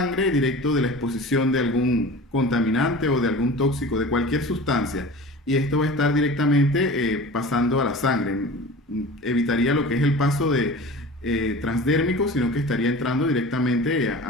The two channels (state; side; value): normal; both; correlation 0.37